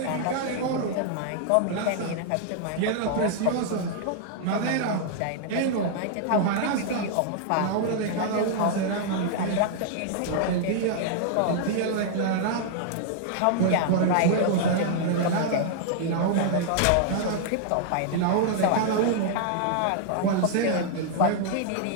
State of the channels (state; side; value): different; both; correlation -0.01